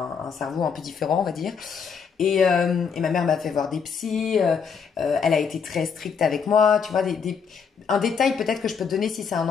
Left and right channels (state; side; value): quieter; right; 6.3 dB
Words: cerveau un peu différent, on va dire. Et ma mère m'a fait voir des psys, elle a été très stricte avec moi, tu vois, un détail peut-être que je peux te donner si c'est un